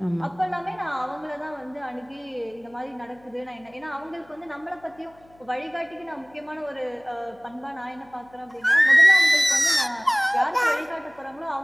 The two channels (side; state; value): left; noise; hum, 29 dB below the sound